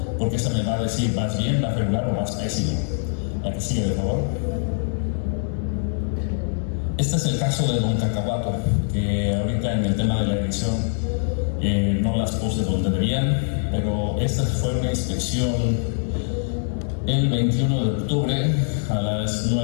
porque esta me va a decir, ¿vas bien, vas regular o vas pésimo? La que sigue, por favor. Este es el caso de Don Cacahuato, que ahorita en el tema de la edición no las puse donde debían, pero esta fue una inspección el 21 de octubre a las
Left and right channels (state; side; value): silent; right; 63 dB below the other